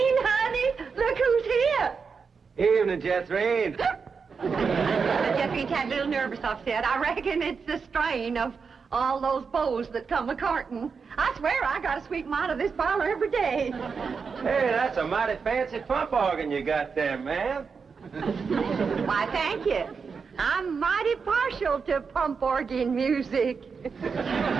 honey, look who's here. Evening, Jethrine. Jethrine's had a little nervous upset. I reckon it's the strain of all those beaux that come a-courting. I swear I got to sweep them out of this parlor every day. Hey, that's a mighty fancy pump organ you got there, ma'am. Why, thank you. I'm mighty partial to pump organ music.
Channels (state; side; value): quieter; left; 5.5 dB